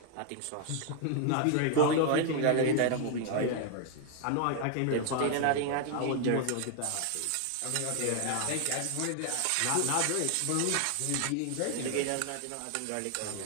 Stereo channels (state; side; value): different; both; correlation 0.00